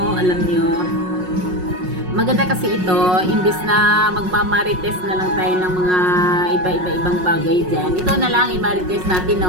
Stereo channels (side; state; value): left; late; 5.5 ms